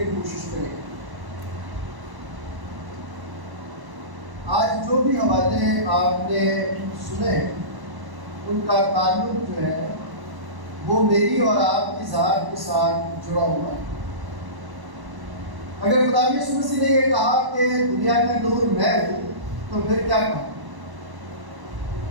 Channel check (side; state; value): left; late; 1.1 ms